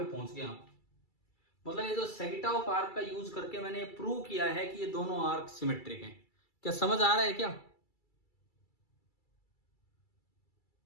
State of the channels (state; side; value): late; right; 2.3 ms